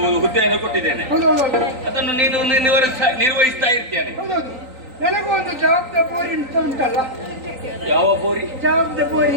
ಹುದ್ದೆಯನ್ನು ಕೊಟ್ಟಿದ್ದೇನೆ. ಅದನ್ನು ನೀನು ನಿರ್ವಹಿಸ್ತಾ ಇರ್ತೇನೆ. ಹೌದೌದು. ನನಗೂ ಒಂದು ಜವಾಬ್ದಾರಿ ಅಂತ ಉಂಟಲ್ಲ. ಯಾವ ಬೋರಿ?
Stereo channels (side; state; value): left; late; 3.9 ms